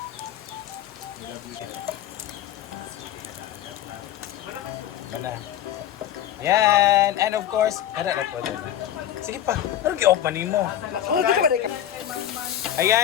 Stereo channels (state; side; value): quieter; right; 11.3 dB